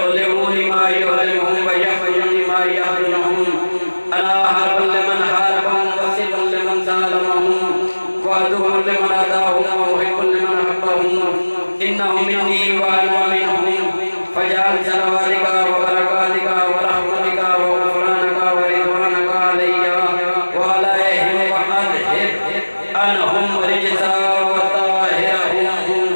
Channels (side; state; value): both; inverted; correlation -1.00